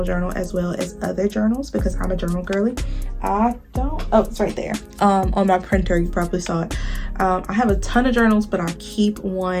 journal as well as other journals, because I'm a journal girly. It's right there on my printer. You probably saw it. I have a ton of journals, but I keep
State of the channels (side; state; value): both; identical; correlation 1.00